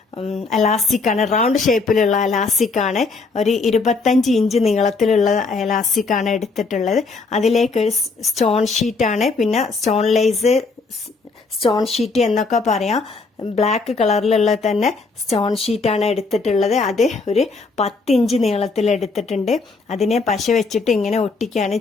എലാസ്റ്റിക്കാണ്, റൗണ്ട് ഷേപ്പിലുള്ള എലാസ്റ്റിക്കാണ്. ഒരു 25 ഇഞ്ച് നീളത്തിലുള്ള എലാസ്റ്റിക്കാണ് എടുത്തിട്ടുള്ളത്. അതിലേക്ക് ഒരു സ്റ്റോൺ ഷീറ്റാണ്, പിന്നെ സ്റ്റോൺ ലേസ്, സ്റ്റോൺ ഷീറ്റ് എന്നൊക്കെ പറയാം. ബ്ലാക്ക് കളറിലുള്ള തന്നെ സ്റ്റോൺ ഷീറ്റാണ് എടുത്തിട്ടുള്ളത്. അത് ഒരു 10 ഇഞ്ച് നീളത്തിൽ എടുത്തിട്ടുണ്ട്. അതിനെ പശ വെച്ചിട്ട് ഇങ്ങനെ ഒട്ടിക്കുകയാണ്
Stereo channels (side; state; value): right; quieter; 4.1 dB